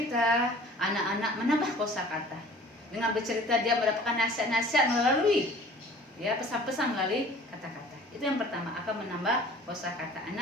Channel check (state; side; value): normal; both; correlation 0.48